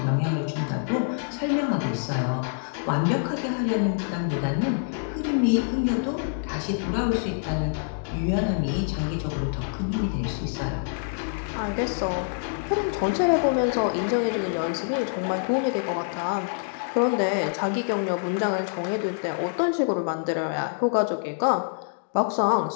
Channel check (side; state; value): right; silent; digital silence